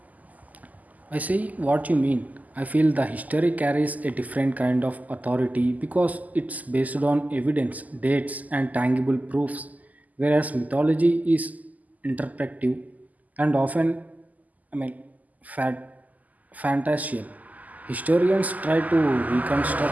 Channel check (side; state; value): left; late; 0.079 ms